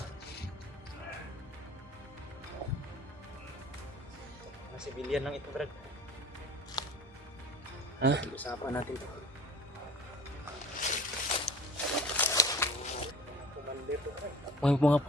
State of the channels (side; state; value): both; normal; correlation 0.43